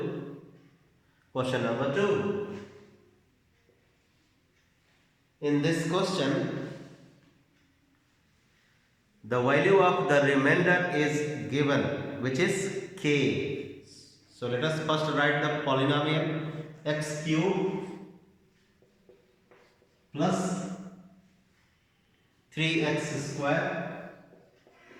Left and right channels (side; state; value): both; identical; correlation 1.00